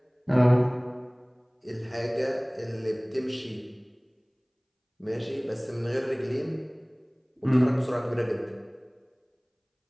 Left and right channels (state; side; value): identical; both; correlation 1.00